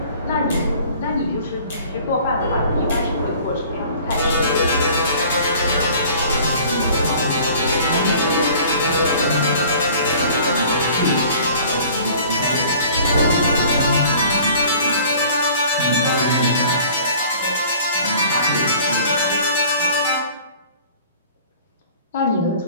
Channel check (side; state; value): both; inverted; correlation -0.49